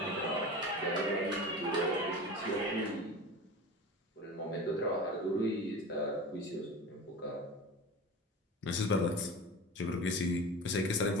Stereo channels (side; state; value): both; normal; correlation 0.32